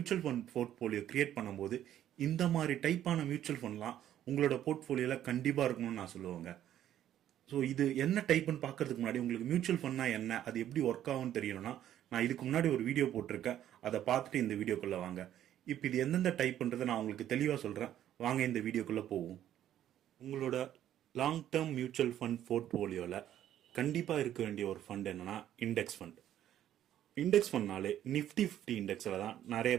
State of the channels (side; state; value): left; quieter; 11.5 dB